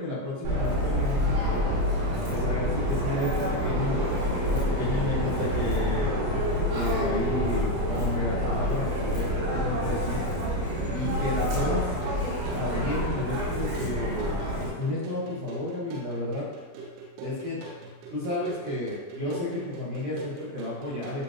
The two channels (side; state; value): left; late; 29 ms